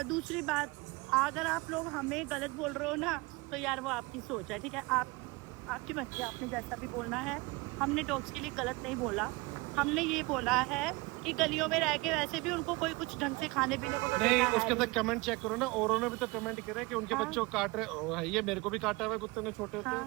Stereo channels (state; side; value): quieter; left; 24.6 dB